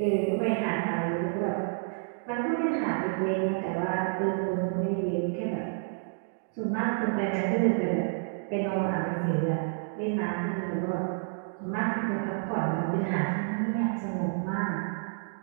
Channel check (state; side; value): silent; left; digital silence